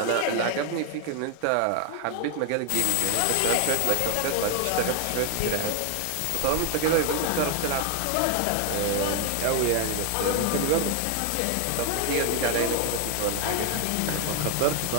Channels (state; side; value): different; both; correlation 0.01